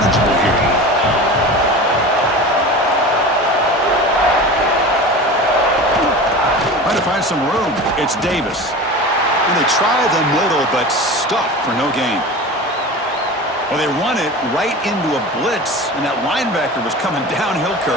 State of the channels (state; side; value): normal; both; correlation 0.33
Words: here? Trying to find some room. It's Davis. And they try the middle, but stuffed for no gain. Well, they run it right into a blitz, and that linebacker was coming downhill,